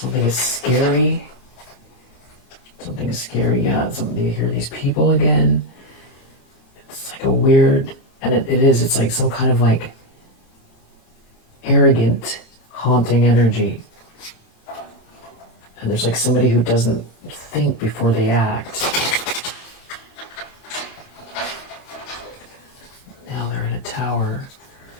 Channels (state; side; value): late; right; 27 ms